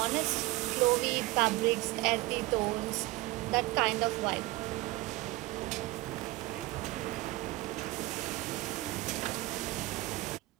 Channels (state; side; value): quieter; left; 20.3 dB